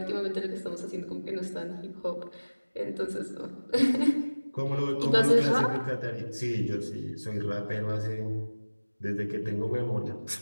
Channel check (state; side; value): inverted; both; correlation -1.00